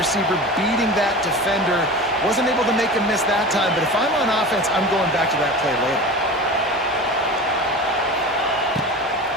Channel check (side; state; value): both; normal; correlation 0.32